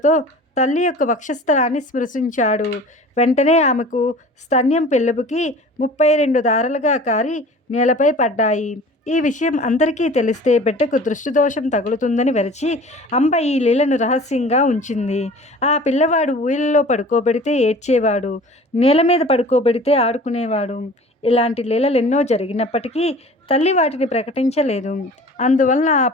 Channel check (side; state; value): both; normal; correlation 0.43